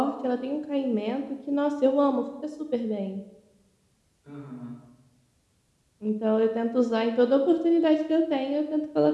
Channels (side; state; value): both; identical; correlation 1.00